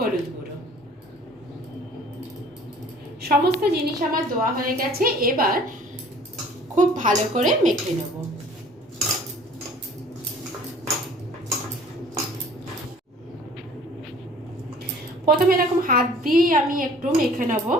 গুঁড়ো। সমস্ত জিনিস আমার দেওয়া হয়ে গেছে, এবার খুব ভালো করে মেখে নেব। প্রথমে এরকম হাত দিয়েই আমি একটু মেখে নেব,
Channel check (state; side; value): normal; both; correlation 0.51